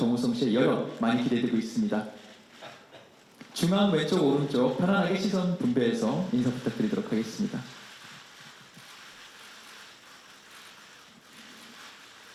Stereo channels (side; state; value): both; identical; correlation 1.00